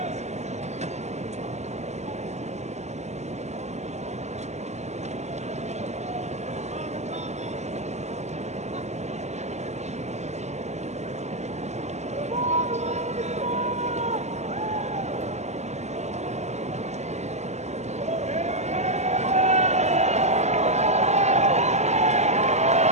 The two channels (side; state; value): left; late; 0.33 ms